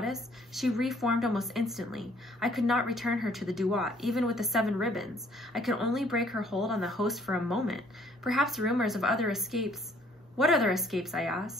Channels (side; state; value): both; normal; correlation 0.61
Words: she reformed almost instantly. I could not return her to the duat, even with the 7 ribbons. I could only break her hold on the host for a moment. Perhaps rumors of other escapes—" "What other escapes?" I